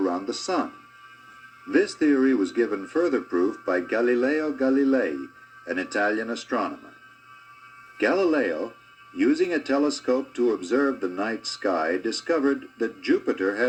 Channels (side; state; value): both; identical; correlation 1.00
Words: the Sun. This theory was given further proof by Galileo Galilei, an Italian astronomer. Galileo, using a telescope to observe the night sky, discovered that Jupiter